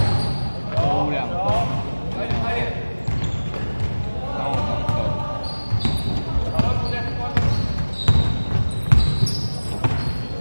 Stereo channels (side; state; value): both; inverted; correlation -1.00